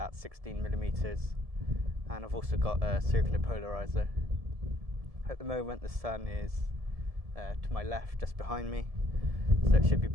16mm, and I've also got a circular polarizer. At the moment the sun is to my left, just behind me, so it should be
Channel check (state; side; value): late; left; 1.7 ms